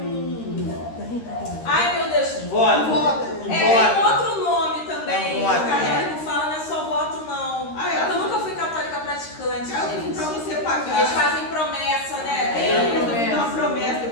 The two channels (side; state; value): right; late; 13 ms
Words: Ai, meu Deus. Voto. Tem outro nome também. É O voto. católico fala, não é só voto, não. Ah, é? Eu nunca fui católica praticante, para gente. você pagar. Eles fazem promessa, né? Eu